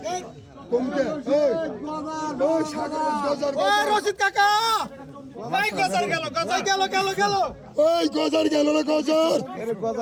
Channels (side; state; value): both; identical; correlation 1.00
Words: কমতে ওই সাগর গজার রশিদ কাকা ভাই গজার গেল ওই গজার গেল না গজার এর